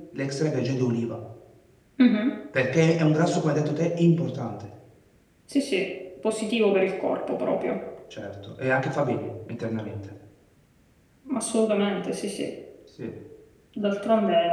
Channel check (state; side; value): identical; both; correlation 1.00